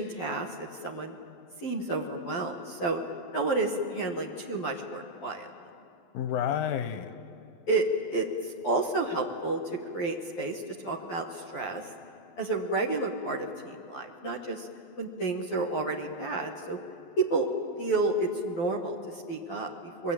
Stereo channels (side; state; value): right; late; 12 ms